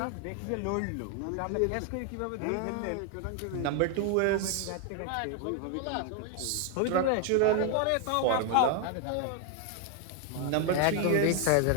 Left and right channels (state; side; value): different; both; correlation 0.00